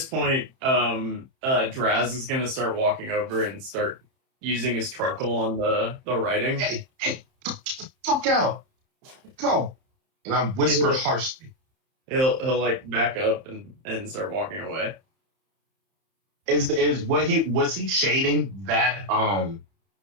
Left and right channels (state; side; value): late; left; 31 ms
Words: point, Draz is gonna start walking over and start using his charcoal on the writing. Hey, get the fuck out. Go. And I whisper Yeah. harshly. He'll like back up and start walking away. Is what was he shading that